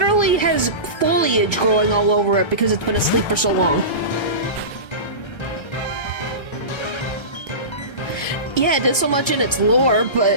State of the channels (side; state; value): right; late; 1.3 ms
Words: has foliage growing all over it because it's been asleep for so long. Yeah, it does so much in its lore,